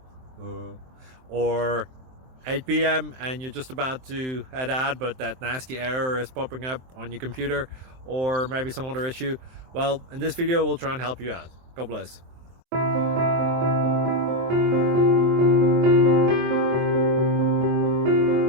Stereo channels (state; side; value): late; left; 23 ms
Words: or 8 p.m. and you're just about to head out, but that nasty error is popping up on your computer, or maybe some other issue. Well, in this video we'll try and help you out. God bless.